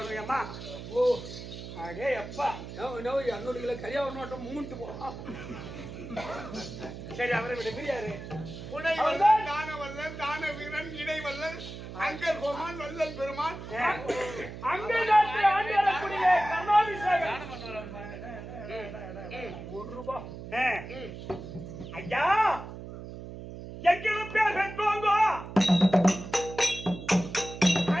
அடே அப்பா நோ 200 கிலோ கரியாவ நோட்டம் மூஞ்சிட்டு போறான். சரி அவரை விட பிரியாரு புனை வல்லல், தான வல்லல், தான வீரன், இடை வல்லல், அங்கர் கோமான், வல்லல் பெருமான். அங்க நாட்டு ஆண்டியரக்கூடிய கர்ணாபிஷேகம் ₹1. ஐயா எங்கிலும் பேர் பெற்றோங்க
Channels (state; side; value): noise; right; hum, 11 dB below the sound